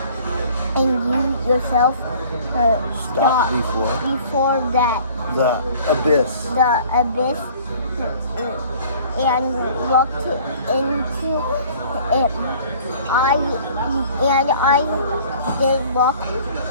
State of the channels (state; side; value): inverted; both; correlation -0.51